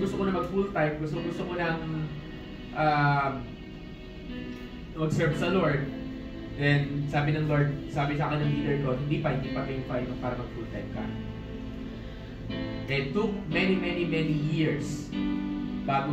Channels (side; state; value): both; identical; correlation 1.00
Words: ko na mag full time. Gusto ko nang mag-serve sa Lord. Then sabi ng Lord, sabi sa akin ng leader ko, hindi pa time para mag full time ka. It took many years bago